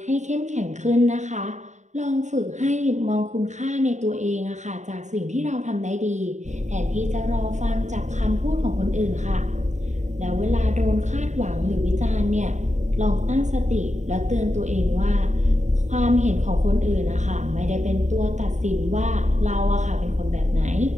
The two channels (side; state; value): left; late; 0.34 ms